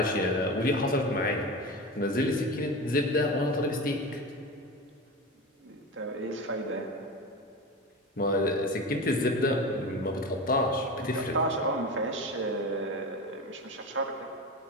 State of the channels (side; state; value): both; normal; correlation 0.26